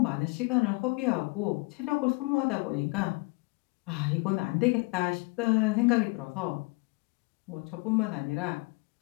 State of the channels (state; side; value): quieter; right; 27.6 dB